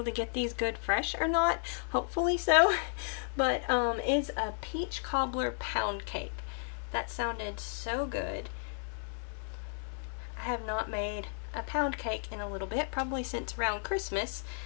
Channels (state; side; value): silent; right; digital silence